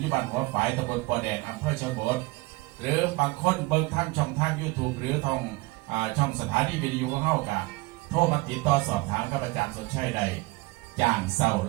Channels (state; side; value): quieter; left; 23.1 dB